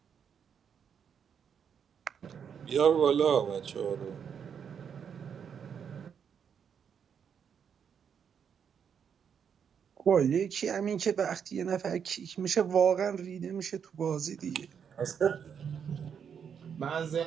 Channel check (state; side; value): quieter; left; 7.5 dB